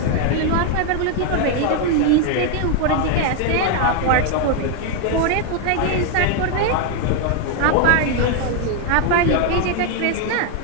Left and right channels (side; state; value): both; different; correlation 0.01